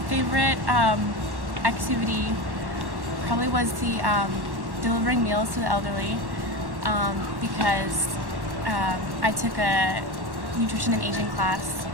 favorite activity probably was the delivering meals to the elderly, because I took a nutrition and aging class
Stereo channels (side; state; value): left; late; 1.1 ms